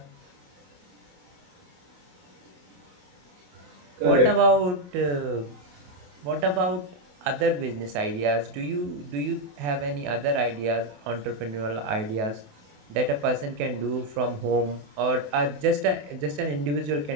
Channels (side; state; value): left; late; 28 ms